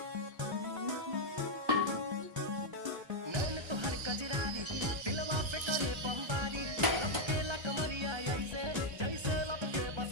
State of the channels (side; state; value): left; late; 1.3 ms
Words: नैन तोहर कजरारी दिलवा पे करे बमबारी लपके ला कमरिया ऐसे जैसे लपके